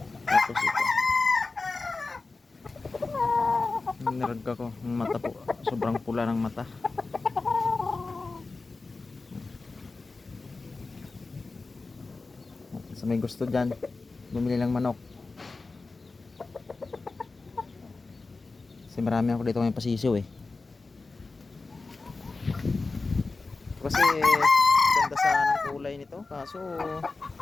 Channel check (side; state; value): right; quieter; 3.7 dB